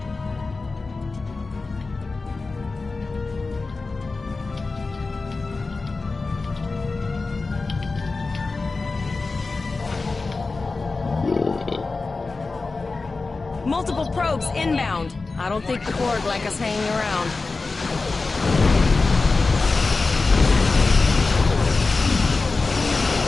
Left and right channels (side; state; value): right; quieter; 3.8 dB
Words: Multiple probes inbound. I don't think the Borg like us hanging around.